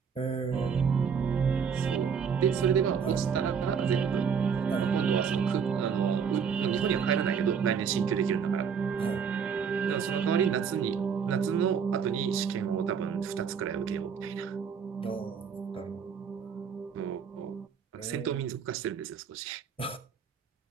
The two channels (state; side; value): quieter; left; 6.7 dB